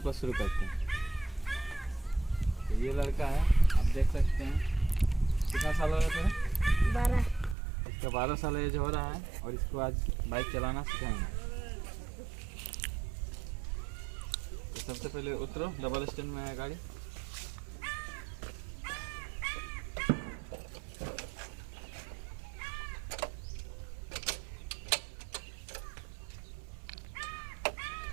को शुरू करते हैं। तो ये लड़का है, आप देख सकते हैं। कितना साल हो रहा है? 12। इसका 12 साल एज हो रहा है और इसको आज बाइक चलाना सिखाएंगे। तो सबसे पहले उतरो, डबल स्टैंड में है गाड़ी।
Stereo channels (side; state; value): left; drops out; at 7.6 s